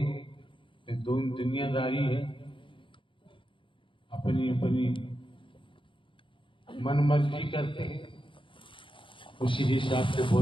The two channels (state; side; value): late; right; 0.25 ms